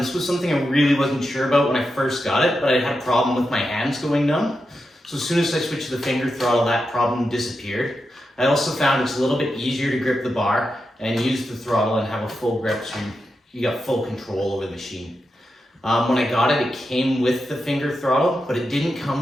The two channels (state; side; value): normal; both; correlation 0.88